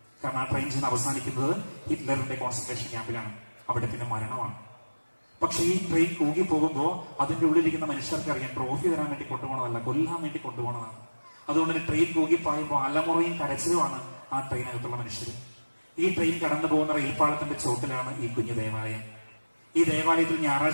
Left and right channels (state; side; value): inverted; both; correlation -1.00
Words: കാരണം ആ ട്രെയിൻ ചെന്ന് അവസാനിക്കുന്നത് ഹിറ്റ്ലറിന്റെ കോൺസെൻട്രേഷൻ ക്യാമ്പിലാണ്. അവിടെ പിന്നെ മരണമാണ്. പക്ഷെ ഈ ട്രെയിൻ കൂകി പോകുമ്പോൾ അതിന്റെ ഉള്ളിലിരിക്കുന്ന മനുഷ്യർക്ക് അറിയാം, ട്രോഫി തരാൻ വേണ്ടി കൊണ്ടുപോകണതല്ല, കൊല്ലാൻ വേണ്ടി കൊണ്ടുപോകണതാണ്. അതുകൊണ്ട് തന്നെ ട്രെയിൻ കൂകിപ്പായുമ്പോൾ അലമുറയും കരച്ചിലുമാണ് ആ ട്രെയിനകത്തുള്ള മനുഷ്യർ. ഈ ട്രെയിൻ കടന്നു പോകുന്ന റെയിൽപ്പാളത്തിന്റെ ചോട്ടിലാണ് ഈ കുഞ്ഞു ദേവാലയം. ഈ ദേവാലയത്തിൽ